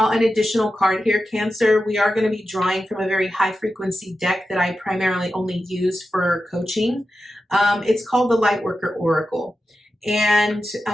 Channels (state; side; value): normal; both; correlation 0.91